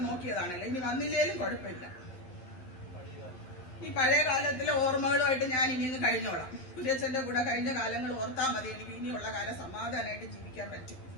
നോക്കിയതാണല്ലോ, ഇനി വന്നില്ലേലും കുഴപ്പമില്ല. ഈ പഴയ കാലത്തിലെ ഓർമ്മകളുമായിട്ട് ഞാൻ ഇനിയൊന്ന് കഴിഞ്ഞോളാം. കുര്യച്ചന്റെ കൂടെ കഴിഞ്ഞ കാലങ്ങൾ ഓർത്താൽ മതി, എനിക്ക് ഇനിയുള്ള കാലം സമാധാനമായിട്ട് ജീവിക്കാൻ പറ്റും.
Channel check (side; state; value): right; late; 11 ms